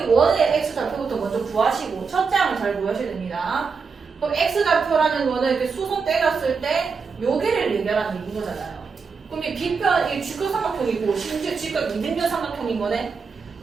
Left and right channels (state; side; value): quieter; left; 5.3 dB